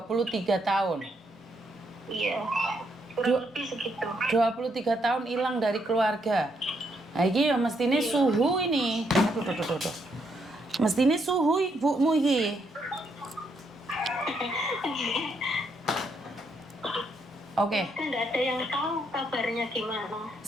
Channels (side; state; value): both; normal; correlation 0.76